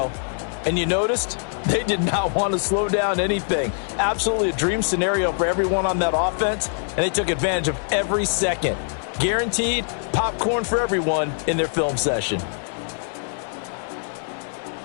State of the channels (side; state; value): right; silent; digital silence